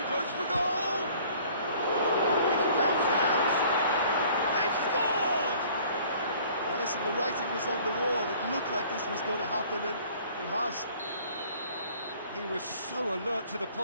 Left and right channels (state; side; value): inverted; both; correlation -0.53